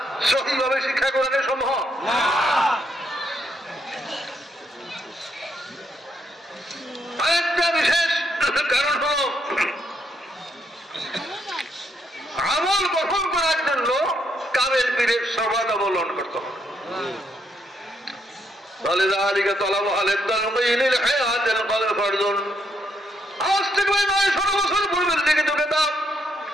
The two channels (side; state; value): both; normal; correlation 0.75